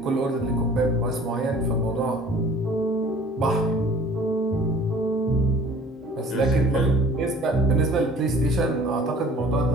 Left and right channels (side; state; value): both; normal; correlation 0.49